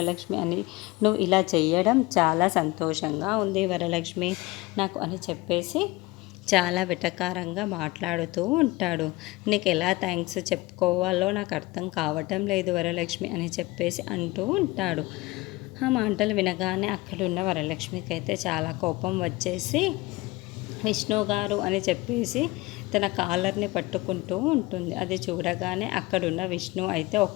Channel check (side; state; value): right; quieter; 21.3 dB